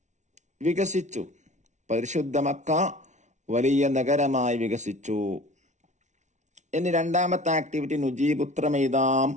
വികസിച്ചു, പരിശുദ്ധ മക്ക വലിയ നഗരമായി വികസിച്ചു. ഇനി രണ്ടാമത്തെ ആക്ടിവിറ്റി നുജീബ്, ഉത്തരമെഴുതാം.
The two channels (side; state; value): left; late; 0.34 ms